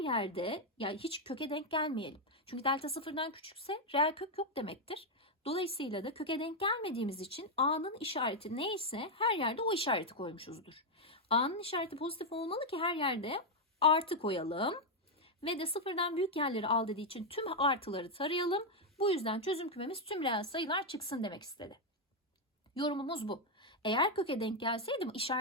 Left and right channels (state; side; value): normal; both; correlation 0.01